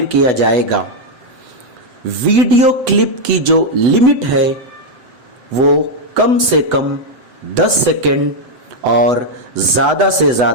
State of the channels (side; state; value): left; late; 8.0 ms